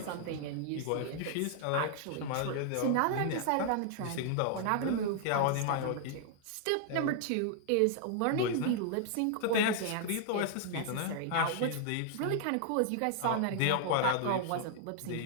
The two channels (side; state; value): both; different; correlation -0.01